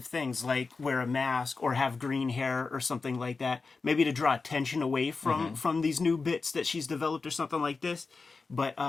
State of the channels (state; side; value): quieter; right; 4.3 dB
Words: things like wear a mask or have green hair or something like that. Maybe to draw attention away from these new bits that she's developed or something like this. But